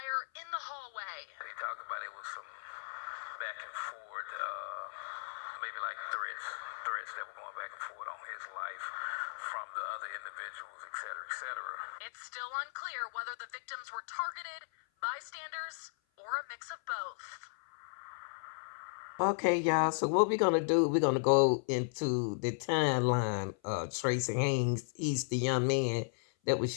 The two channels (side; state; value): right; silent; 54 dB below the other